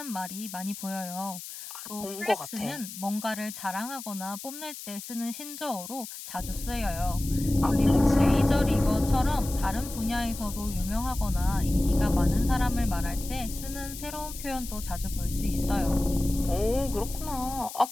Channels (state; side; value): noise; left; hiss, 11 dB below the sound